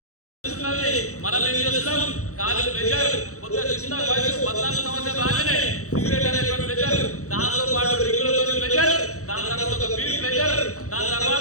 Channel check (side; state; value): right; late; 0.65 ms